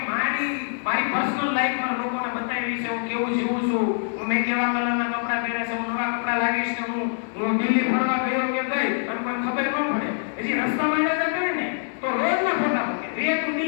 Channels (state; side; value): silent; right; digital silence